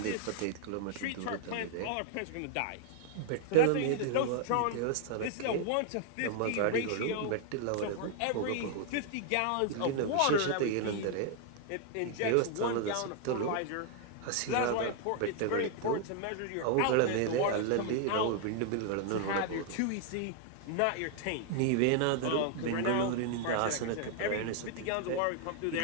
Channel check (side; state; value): both; different; correlation 0.00